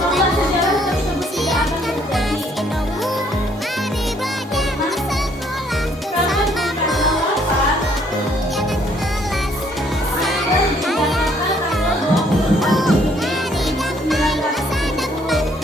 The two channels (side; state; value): both; normal; correlation 0.65